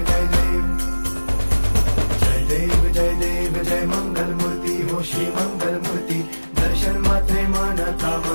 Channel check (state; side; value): inverted; both; correlation -1.00